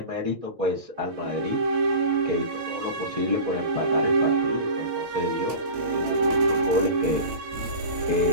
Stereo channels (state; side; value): late; left; 8.8 ms